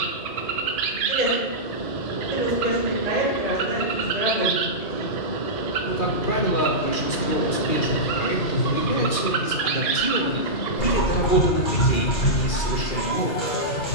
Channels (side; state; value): right; late; 2.4 ms